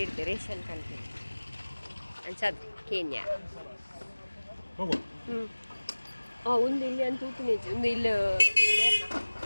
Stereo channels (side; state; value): both; inverted; correlation -1.00